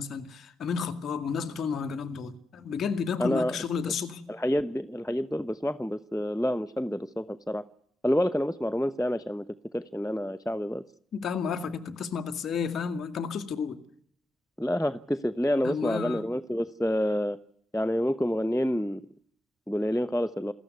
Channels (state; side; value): normal; both; correlation 0.90